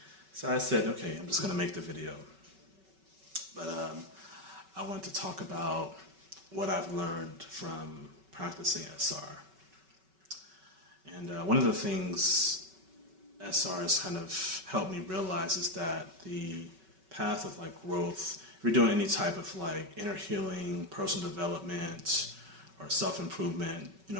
So I said, okay, I'm just gonna make the video. But I wanted to talk about what I've learned from practicing SR. And one of the things SR has kind of helped me realize is that the path of like growth, if you're doing any type of like inner healing, personal development, or self-improvement,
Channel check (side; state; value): left; late; 5.3 ms